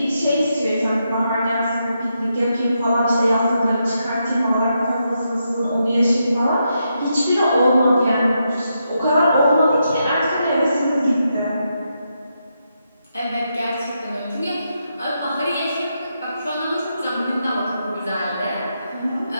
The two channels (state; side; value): inverted; both; correlation -0.83